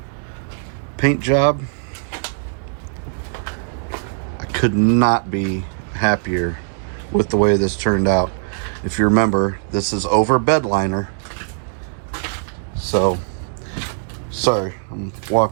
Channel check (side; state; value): left; silent; digital silence